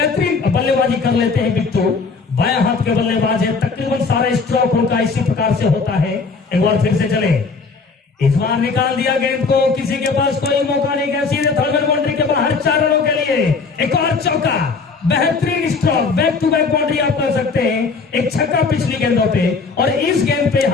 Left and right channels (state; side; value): quieter; right; 4.6 dB